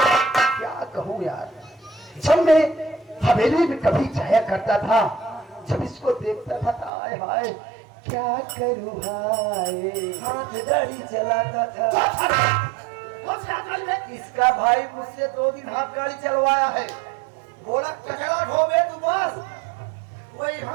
क्या कहूँ यार। जब मैं हवेली में कभी जाया करता था जब इसको देखता था तो हाय हाय क्या करूँ हाय हाथ गाड़ी चलाता था। इसका भाई मुझसे 2 दिन हाथ गाड़ी चलवाया है बोला कचरा ढोबे तू बस वही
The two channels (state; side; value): drops out; left; at 6.9 s